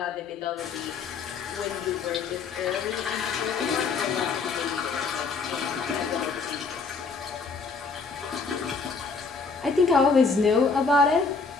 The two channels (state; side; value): quieter; right; 4.7 dB